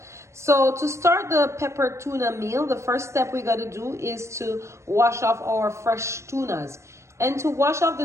So to start the pepper tuna meal, the first step we got to do is to wash off our fresh tunas. And to wash off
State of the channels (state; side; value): late; left; 0.14 ms